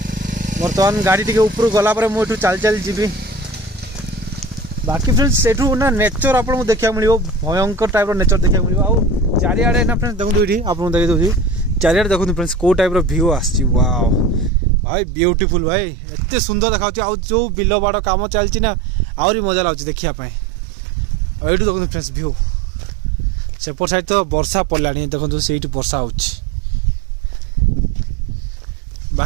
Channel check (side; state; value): left; drops out; at 14.5 s